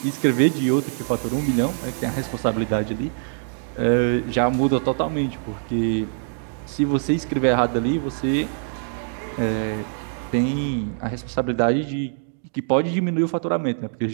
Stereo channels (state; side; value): silent; left; digital silence